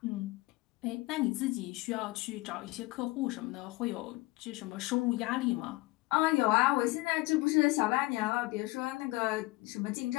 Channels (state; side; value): quieter; right; 21.3 dB